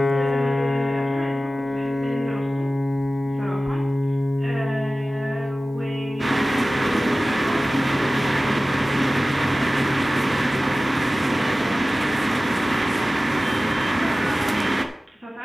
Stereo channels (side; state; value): both; normal; correlation 0.96